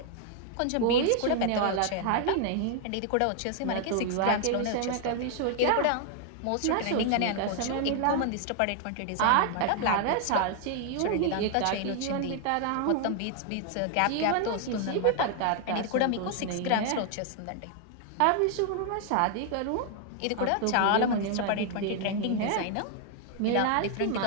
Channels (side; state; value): both; different; correlation 0.00